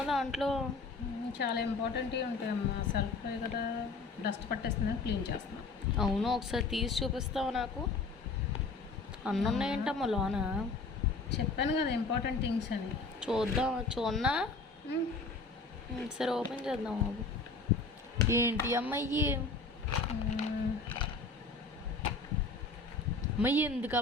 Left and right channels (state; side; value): quieter; right; 4.0 dB